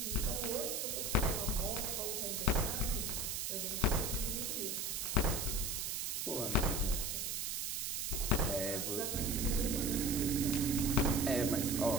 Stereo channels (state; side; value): noise; right; hiss, 1 dB below the sound